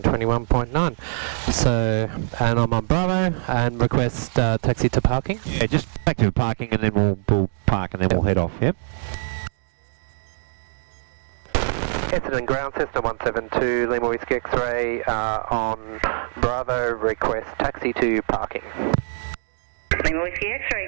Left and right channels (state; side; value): silent; left; digital silence